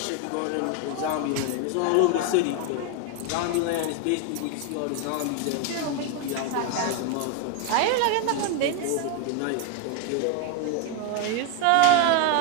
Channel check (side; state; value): both; different; correlation 0.01